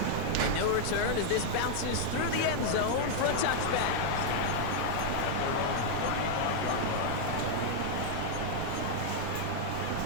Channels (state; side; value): different; both; correlation -0.01